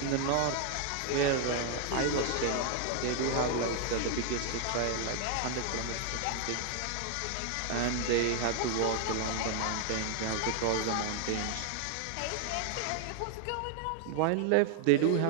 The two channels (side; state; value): both; different; correlation 0.00